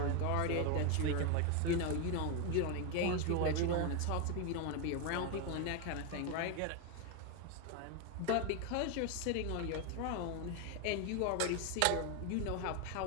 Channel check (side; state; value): both; different; correlation 0.01